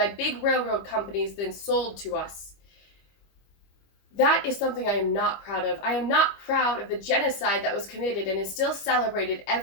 big railroad companies, then sold to us. That is something I am not proud of. I am not proud of the genocide that was committed and is still celebrated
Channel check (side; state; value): right; late; 25 ms